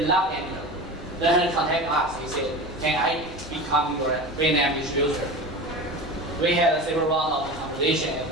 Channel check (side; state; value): both; normal; correlation 0.30